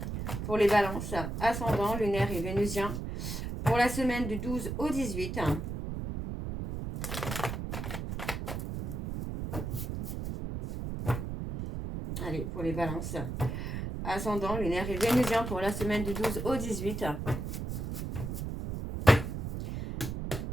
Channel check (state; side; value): noise; right; rumble, 4 dB below the sound